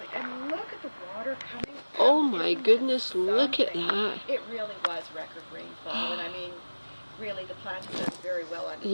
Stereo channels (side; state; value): both; inverted; correlation -1.00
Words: and look at the water coming out. Oh my goodness, look at that. It really was record rainfall, and I mean, really the plant has done very well under